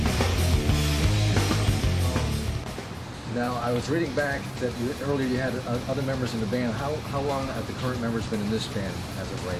Now, I was reading back that earlier you had other members in the band. How long have the current members been in this band as of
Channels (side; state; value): both; identical; correlation 1.00